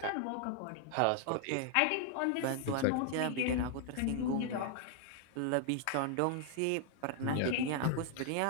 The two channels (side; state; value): both; different; correlation 0.00